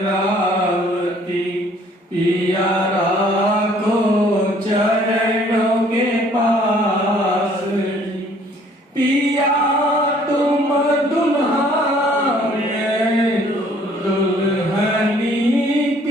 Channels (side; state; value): both; normal; correlation 0.59